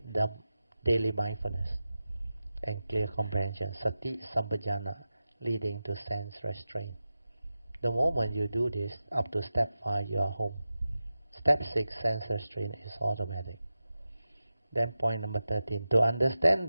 the daily mindfulness and clear comprehension, sati sampajana, leading to sense restraint. The moment you do this, up to step 5 you are home. Step 6, sense restraint is automatic. Then point number 13, to understand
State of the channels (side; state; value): both; inverted; correlation -0.93